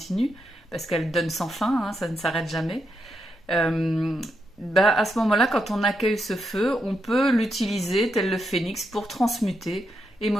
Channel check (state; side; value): normal; both; correlation 0.82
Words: parce qu'elle donne sans fin, hein, ça ne s'arrête jamais. À ce moment-là, quand on accueille ce feu, on peut l'utiliser tel le phénix pour transmuter